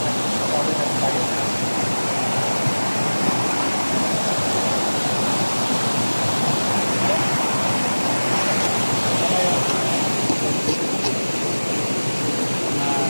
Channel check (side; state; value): both; inverted; correlation -1.00